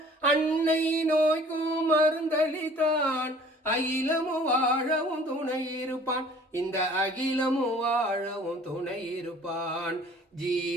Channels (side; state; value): both; normal; correlation 0.51